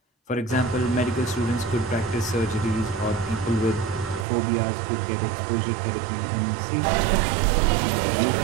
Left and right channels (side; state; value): left; drops out; at 4.2 s